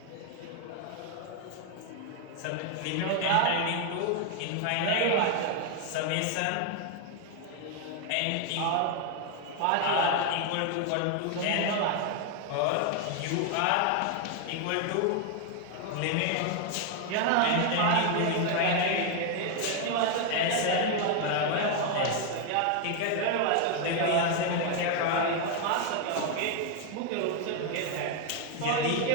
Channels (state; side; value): different; both; correlation 0.01